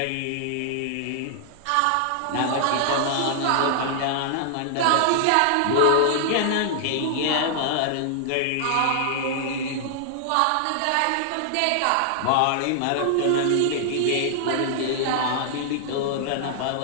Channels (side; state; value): both; different; correlation -0.01